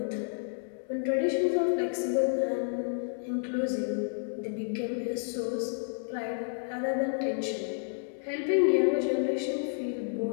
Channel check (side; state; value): right; silent; digital silence